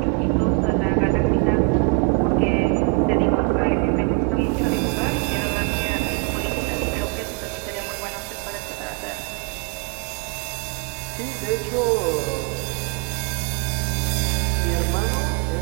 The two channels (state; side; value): quieter; left; 28.6 dB